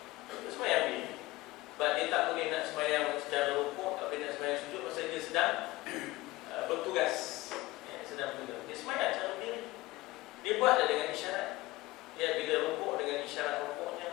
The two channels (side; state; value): right; quieter; 19.3 dB